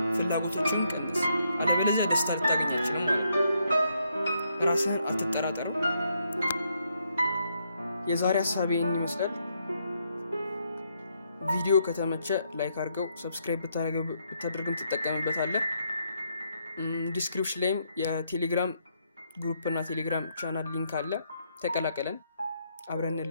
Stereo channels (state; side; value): inverted; both; correlation -0.76